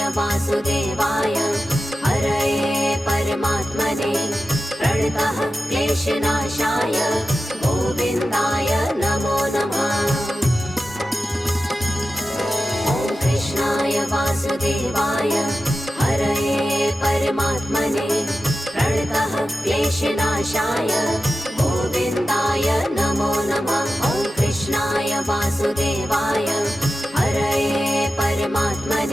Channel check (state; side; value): normal; both; correlation 0.93